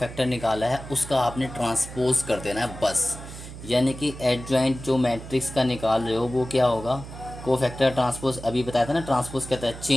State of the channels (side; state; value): right; noise; hum, 13 dB below the sound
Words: निकाला है उसका आपने ट्रांसपोज कर देना है बस। यानी कि एडजॉइंट जो मैट्रिक्स का निकाल रहे हो वो क्या होगा, को फैक्टर ट्रांसपोज, अभी बताया था ना ट्रांसपोज कहता है